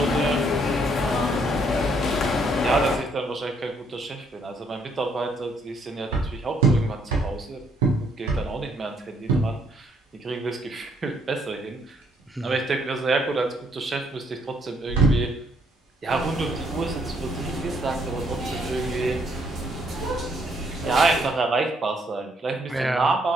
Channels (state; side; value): normal; both; correlation 0.69